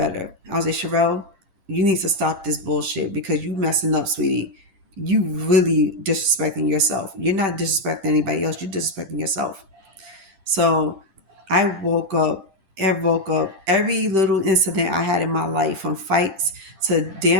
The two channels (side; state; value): left; late; 10 ms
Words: I was like, Sherelle, you need to stop this bullshit because you messing up, sweetie. you really disrespecting yourself. You're not disrespecting anybody else, you're disrespecting yourself. So I woke up every little incident I had in my life, from fights to